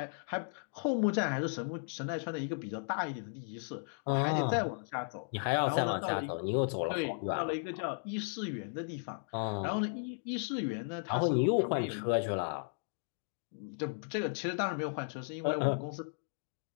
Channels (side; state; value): right; silent; digital silence